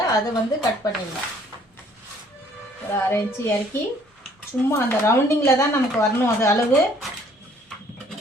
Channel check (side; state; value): both; normal; correlation 0.60